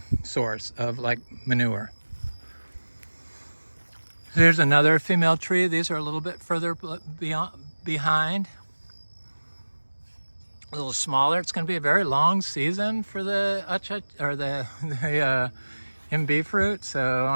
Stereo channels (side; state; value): both; inverted; correlation -1.00